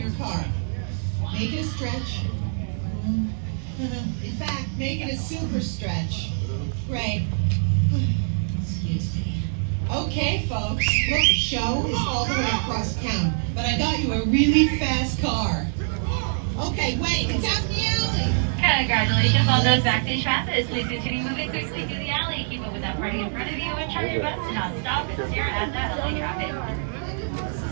car. Make it a stretch. In fact, make it a super stretch. Great. Excuse me. Okay, folks. Look, the show is all the way across town, but I got you a really fast car. Okay, wait, it's out in the alley. Congratulations on those backstage passes. Please continue moving quickly through the alley. Keep up with that party in front of you and try your best to not stop and stare at that LA traffic.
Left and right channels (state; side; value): silent; left; digital silence